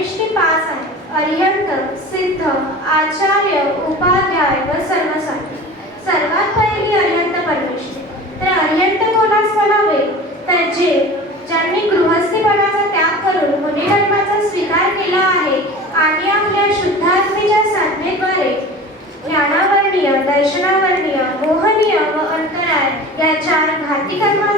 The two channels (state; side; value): normal; both; correlation 0.37